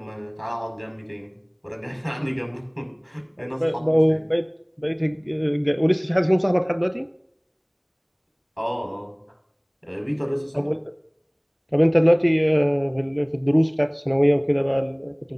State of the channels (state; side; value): identical; both; correlation 1.00